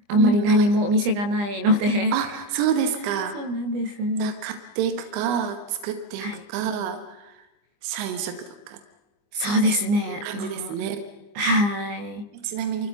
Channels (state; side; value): late; left; 25 ms